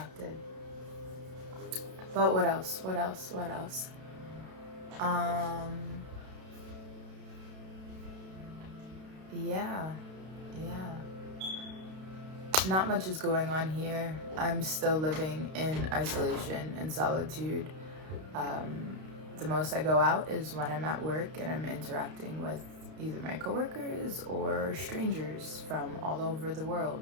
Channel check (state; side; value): late; left; 32 ms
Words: But what else? Yeah. Not much is going on here. I'm still living in isolation and solitude. The most I go out is when I'm at work and I'm interacting with either my coworkers or strangers from all over the